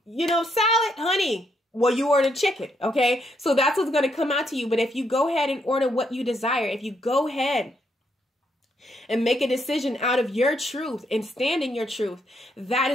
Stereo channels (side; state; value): both; normal; correlation 0.76